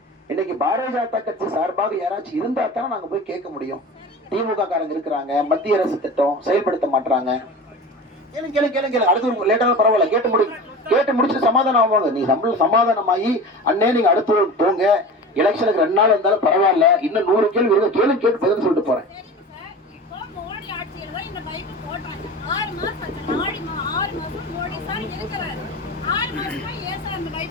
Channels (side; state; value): both; normal; correlation 0.33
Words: இன்னைக்கு பாரதிய ஜனதா கட்சி சார்பாக யாராச்சும் இருந்தா தானே நாங்க போய் கேட்க முடியும். திமுக காரங்க இருக்கிறாங்க, மத்திய அரசு திட்டம் செயல்படுத்த மாட்டாங்க. கேளுங்க கேளுங்க கேளுங்க கேளுங்க, அடுத்து லேட்டான பரவாயில்ல, கேட்டு முடிச்சுட்டு சமாதானம் ஆவாங்க. நீ சமாதானமாயி அண்ணே நீங்க அடுத்து போங்க, எலெக்ஷனுக்கு 2 நாள் இருந்தாலும் பரவாயில்ல, இன்னும் 100 கேள்வி இருக்கு, கேட்டு பதில் சொல்லிட்டு போறேன்.